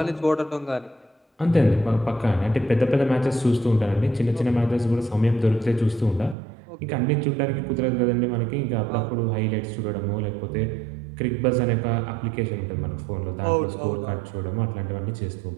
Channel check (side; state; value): left; drops out; at 6.4 s